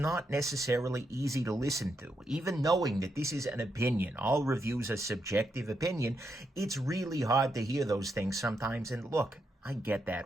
necessarily easy to listen to. Even knowing that this is an opinion, all reviews are subjective opinion, it's really hard to hear those things sometimes. And look, I get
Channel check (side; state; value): both; normal; correlation 0.82